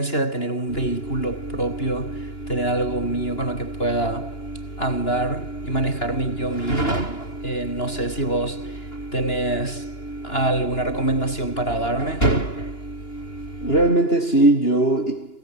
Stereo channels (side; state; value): right; late; 2.9 ms